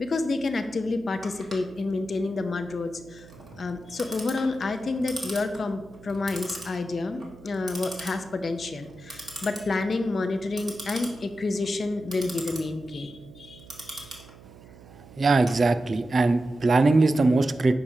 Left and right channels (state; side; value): noise; right; hum, 21 dB below the sound